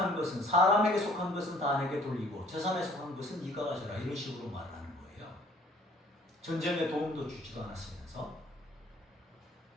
것은, 사람에게 속한 것은 다 내게 돌리고 재산에 속한 것은 네가 가져라, 이런 식으로 말을 하는 거예요. 전쟁에 도움도 주지도 않았으면서.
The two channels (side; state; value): both; normal; correlation 0.57